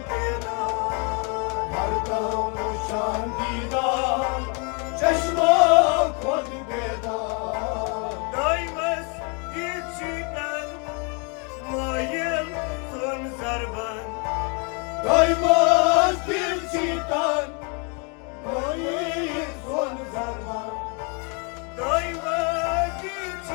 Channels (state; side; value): quieter; right; 34.8 dB